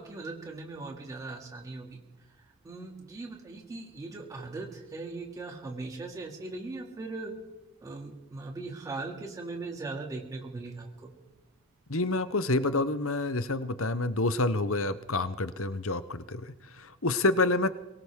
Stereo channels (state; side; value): normal; both; correlation 0.18